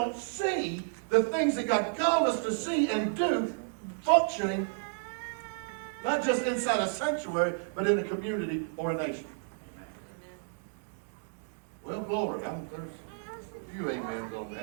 see the things that God called us to see and do functioning, not just inside a sanctuary, but in a community or a nation. Well, glory. There's a few amens on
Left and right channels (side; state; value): left; silent; digital silence